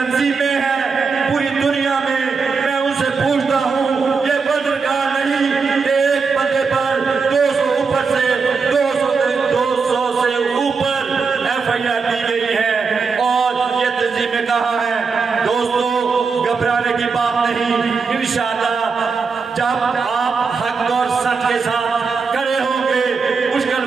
ہیں پوری دنیا میں، میں ان سے پوچھتا ہوں، یہ ورلڈ ریکارڈ نہیں کہ ایک بندے پر 200 اوپر سے 200 سے اوپر ایف آئی آر دی گئی ہے اور یہ تنظیمیں کہاں ہیں؟ دوستو گھبرانے کی بات نہیں، انشاءاللہ جب آپ حق اور سچ کے ساتھ کھڑے ہوں گے،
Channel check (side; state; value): left; quieter; 5.0 dB